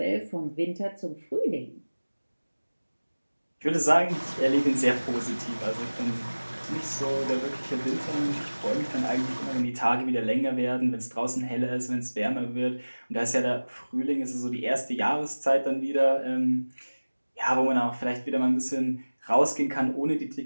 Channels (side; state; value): both; inverted; correlation -1.00